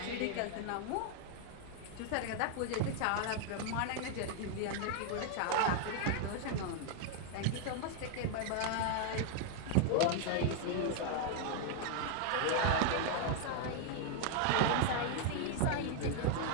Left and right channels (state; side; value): different; both; correlation 0.00